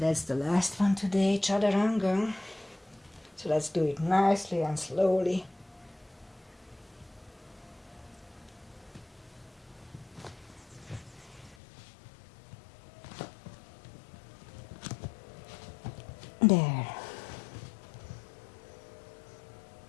the last one today, chaturanga. So let's do it nicely and slowly. There.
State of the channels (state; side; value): drops out; right; at 11.6 s